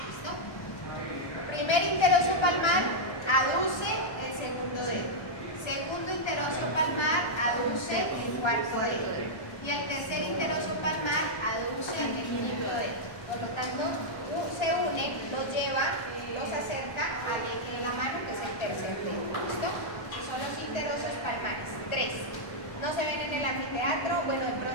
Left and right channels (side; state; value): right; late; 1.3 ms